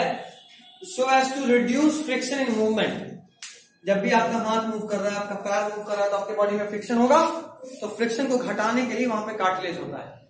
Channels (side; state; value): both; identical; correlation 1.00